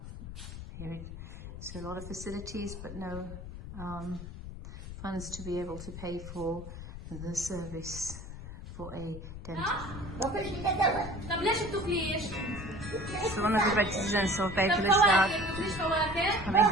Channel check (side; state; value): left; noise; rumble, 10 dB below the sound